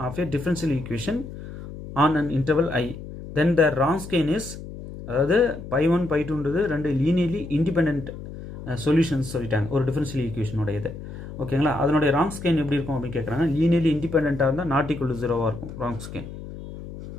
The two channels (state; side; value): noise; left; hum, 11 dB below the sound